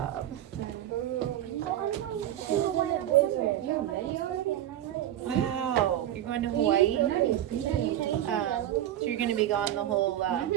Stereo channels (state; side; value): quieter; left; 12.2 dB